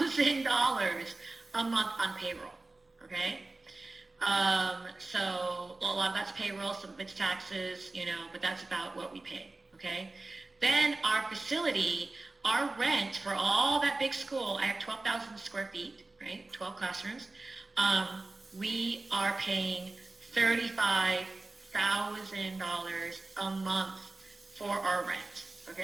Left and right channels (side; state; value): left; quieter; 3.1 dB